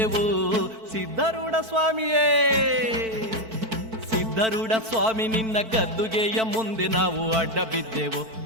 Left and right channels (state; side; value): late; left; 4.5 ms